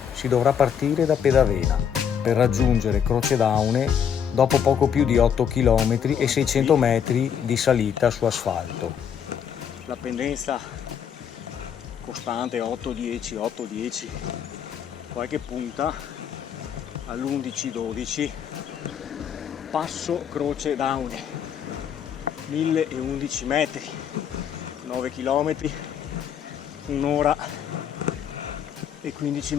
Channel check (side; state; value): right; quieter; 8.1 dB